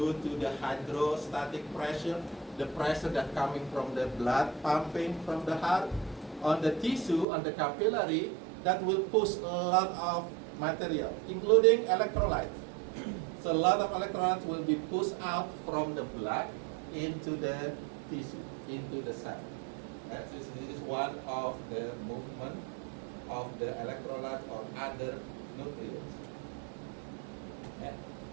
to the hydrostatic pressure, the pressure that coming from the blood pumping from the heart on the tissue, on the capillary, that will push a lot of material, including electrolytes. So a lot of electrolytes will be pushed out from the blood into the tissue, into the cell. This is one of the movement of the electrolyte or other nutrients,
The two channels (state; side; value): drops out; left; at 7.2 s